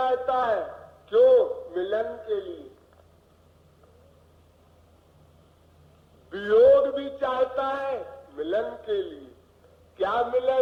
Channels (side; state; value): both; identical; correlation 1.00